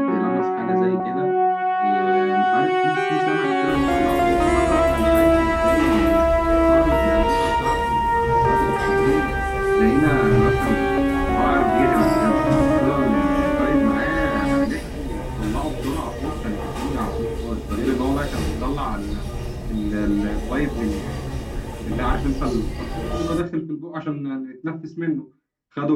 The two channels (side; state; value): both; identical; correlation 1.00